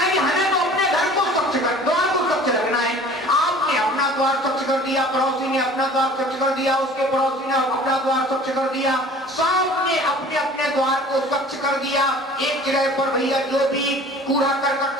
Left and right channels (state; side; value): normal; both; correlation 0.47